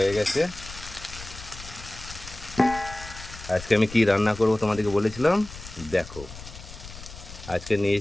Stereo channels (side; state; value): left; noise; rumble, 14 dB below the sound